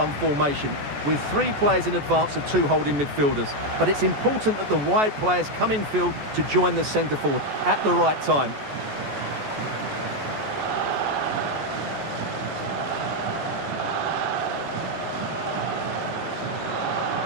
formation with 3 players in advance of 2 holding midfielders. But it's important that the wide players come in field to join the centre forward at the right time.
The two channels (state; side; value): late; left; 14 ms